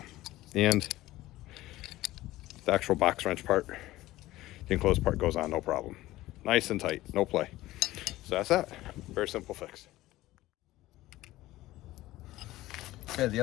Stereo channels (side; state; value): right; quieter; 16.7 dB